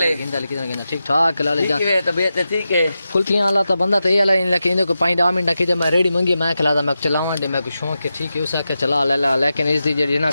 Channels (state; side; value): inverted; both; correlation -0.91